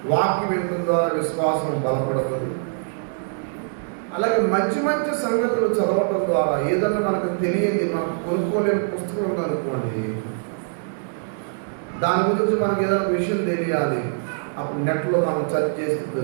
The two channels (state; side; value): silent; left; digital silence